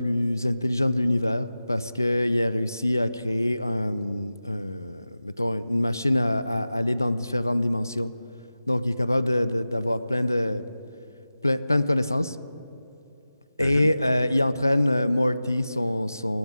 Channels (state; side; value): inverted; both; correlation -0.95